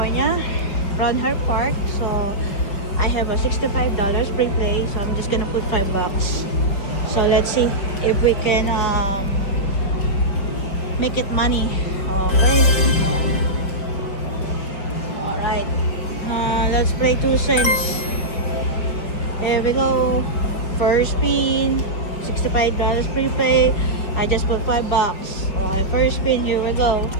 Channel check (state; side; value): late; right; 5.1 ms